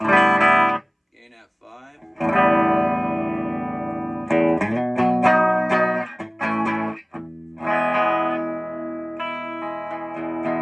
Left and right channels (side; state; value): both; identical; correlation 1.00